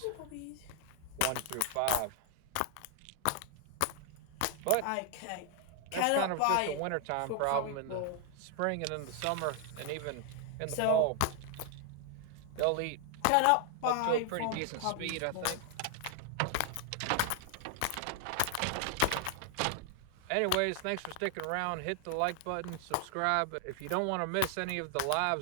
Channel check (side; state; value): both; different; correlation 0.00